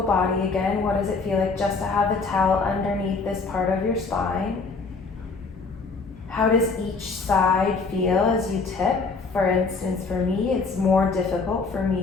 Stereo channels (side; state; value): right; quieter; 4.3 dB